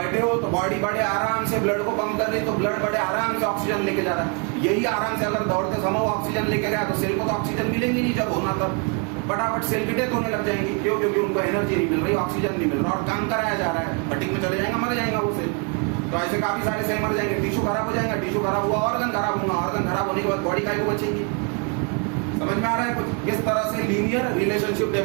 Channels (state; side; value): quieter; left; 34.5 dB